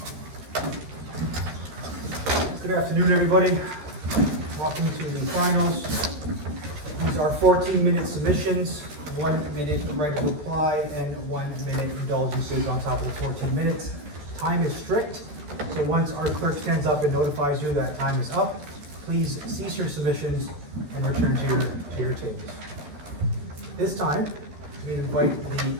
Good afternoon, everybody. Welcome to the finals. These are 14-minute submissions, 1 minute right of reply, and 1 minute indulgences on top of the 14 minutes. Time is strict, so once our clerk stands up and notifies you that time is up, please cease your submissions and return to your tables. This time, we invite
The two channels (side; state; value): left; late; 13 ms